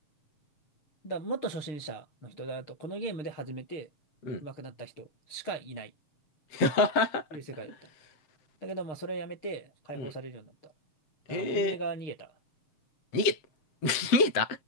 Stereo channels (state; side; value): late; right; 7.6 ms